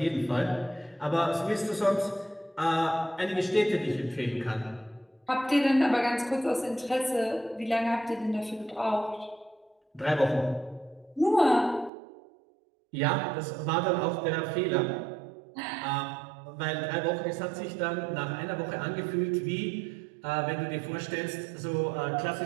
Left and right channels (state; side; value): drops out; left; at 11.9 s